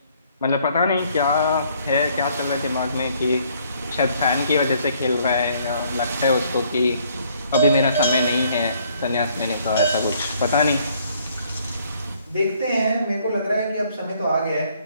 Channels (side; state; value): both; inverted; correlation -0.64